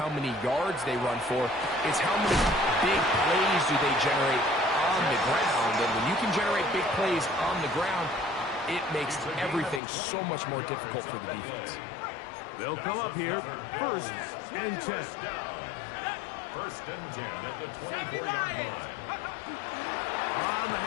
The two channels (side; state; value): right; drops out; at 9.8 s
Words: many yards they run for, it's how many big plays do they generate on the ground. And when you can generate big plays on the ground, it makes everything so much more difficult for the defense. They'll come up here first and 10. First and 10 at the 24-yard line. On the